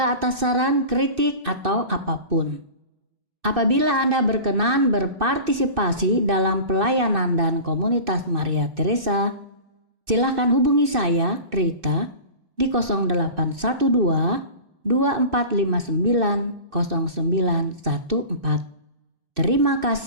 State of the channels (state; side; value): late; left; 2.6 ms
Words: atas saran, kritik, atau apapun. Apabila Anda berkenan berpartisipasi dalam pelayanan dan komunitas Maria Teresa, silakan hubungi saya, Rita, di 0812 2459 0914. Terima